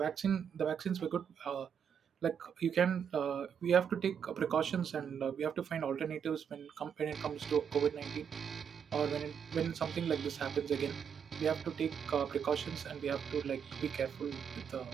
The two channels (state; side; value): quieter; left; 7.6 dB